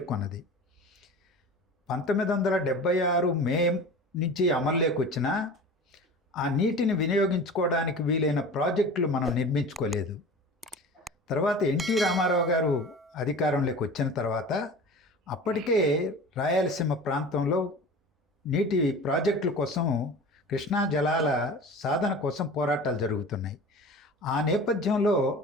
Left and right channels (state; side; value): normal; both; correlation 0.37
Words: 1976 మే నుంచి అమల్లోకి వచ్చిన ఆ నీటిని వినియోగించుకోవడానికి వీలైన ప్రాజెక్టులు మనం నిర్మించుకోలేదు. తర్వాత ఎన్టీ రామారావు గారు అధికారంలోకి వచ్చిన తర్వాత అప్పటికే రాయలసీమ ప్రాంతంలో నీటి ప్రాజెక్టుల కోసం, కృష్ణా జలాల సాధన కోసం పోరాటాలు జరుగుతున్నాయి. ఆ నేపథ్యంలో